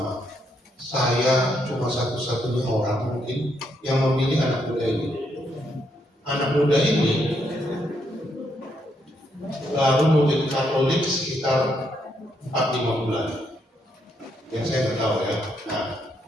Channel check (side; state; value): both; normal; correlation 0.76